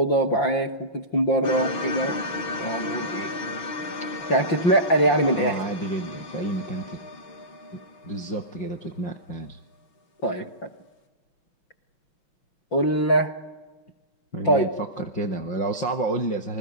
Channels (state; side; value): late; right; 5.8 ms